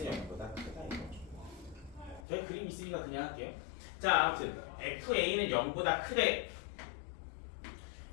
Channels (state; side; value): drops out; right; at 2.2 s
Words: 0보다 크다 이거죠. 저희 그림 있으니까 그냥 할게요. 자, 아무튼 FA는 0보다 크대.